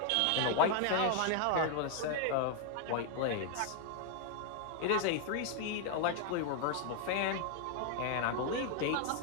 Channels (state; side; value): different; both; correlation 0.00